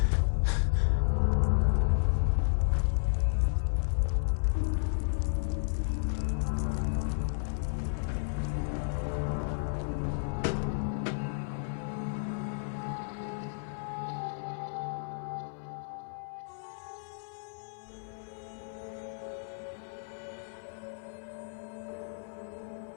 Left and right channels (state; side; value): silent; right; 56 dB below the other